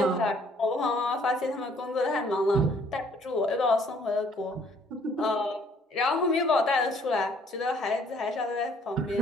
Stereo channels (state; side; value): normal; both; correlation 0.61